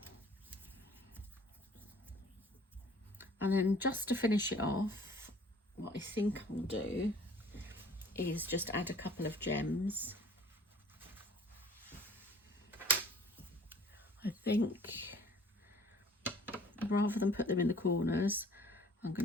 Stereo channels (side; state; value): both; normal; correlation 0.52